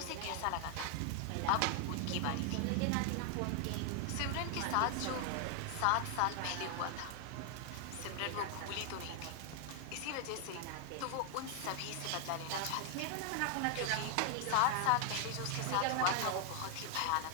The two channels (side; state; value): both; different; correlation 0.00